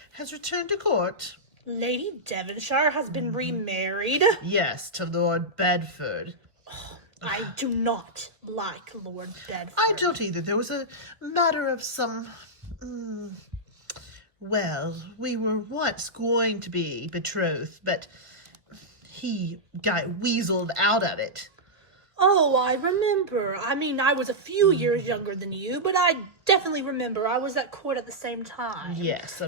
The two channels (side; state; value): left; late; 1.4 ms